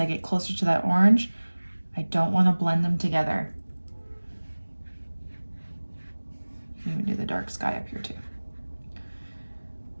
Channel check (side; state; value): both; inverted; correlation -1.00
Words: get closer to that orange. I don't want to blend them together. You can even do the dark sky up here too.